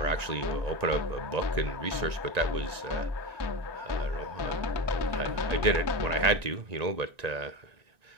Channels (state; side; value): late; left; 1.9 ms